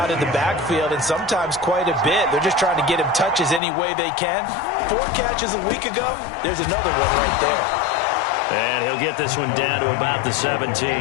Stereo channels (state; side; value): drops out; right; at 3.6 s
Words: in the backfield, and sometimes quite a bit. They're just trying to get him touches any way they can. 4 catches a week ago. There's another one right there. And he'll get this one down to about the